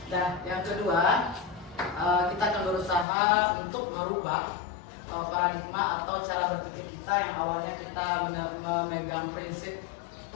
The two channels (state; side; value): drops out; right; at 3.1 s